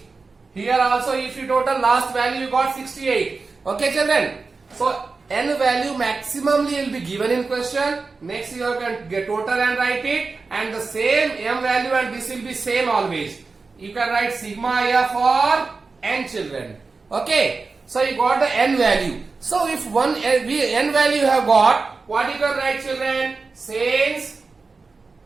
Here also if you total last value you got 68. Okay children. So n value maximally will be given in question. Next you can get total and write it. And the same m value and this will be same always. You can write sigma f for n children. Okay. So you got the n value. So if one n value you have got, what you can write children? Since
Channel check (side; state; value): left; quieter; 4.2 dB